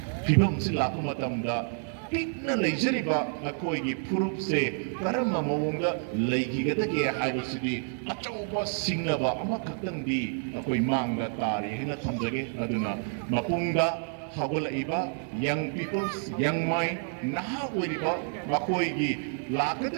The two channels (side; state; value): left; silent; 56 dB below the other